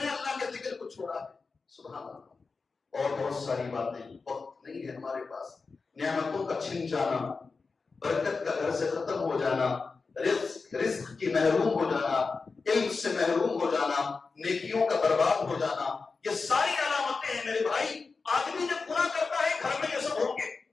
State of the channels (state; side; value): quieter; right; 4.4 dB